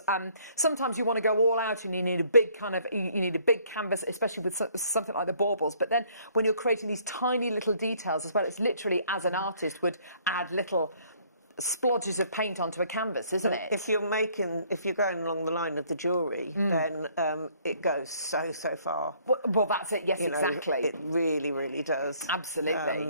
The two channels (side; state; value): both; inverted; correlation -0.62